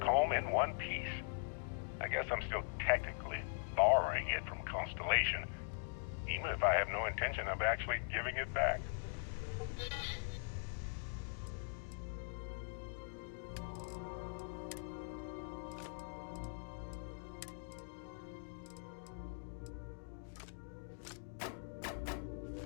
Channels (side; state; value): right; silent; digital silence